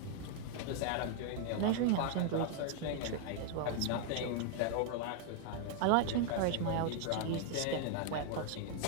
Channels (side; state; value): both; different; correlation 0.00